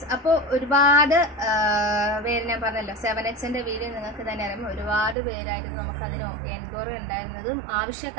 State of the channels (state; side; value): drops out; left; at 5.2 s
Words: അപ്പോൾ ഒരുപാട് പേര് ഞാൻ പറഞ്ഞല്ലോ 7Xന്റെ വീഡിയോ നിങ്ങൾക്ക് തന്നെ അറിയാം. ഒരുപാട് പേരായിരുന്നു നമുക്കതിന് എൻക്വയറി ഉണ്ടായിരുന്നതും